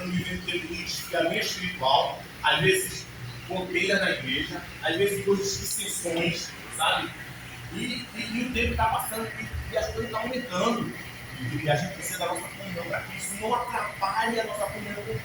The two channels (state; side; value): identical; both; correlation 1.00